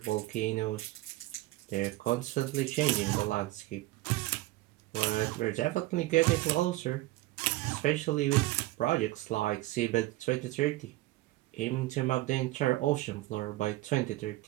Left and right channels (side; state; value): left; quieter; 18.1 dB